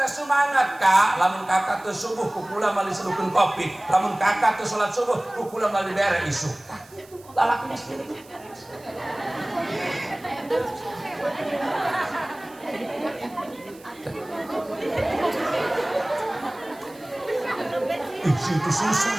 semangat ka lamun kakak teu subuh ku kula mali sedukeun kopi lamun kakak teu salat subuh ku kula mali bere isuk lalaki mesti itu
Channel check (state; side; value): noise; right; hiss, 25 dB below the sound